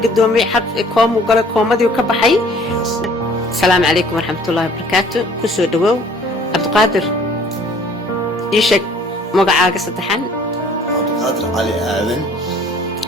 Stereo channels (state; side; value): normal; both; correlation 0.55